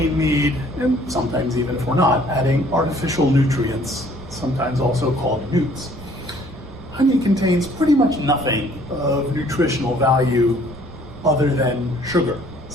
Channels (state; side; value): noise; right; rumble, 18 dB below the sound